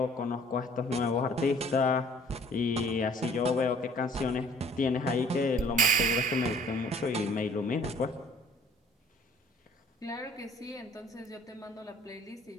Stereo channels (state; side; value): normal; both; correlation 0.54